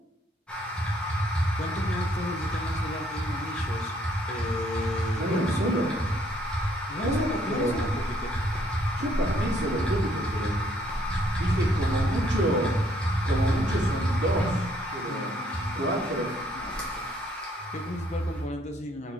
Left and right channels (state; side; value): normal; both; correlation 0.66